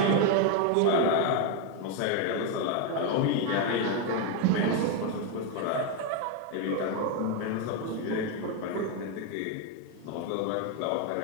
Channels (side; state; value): both; different; correlation 0.01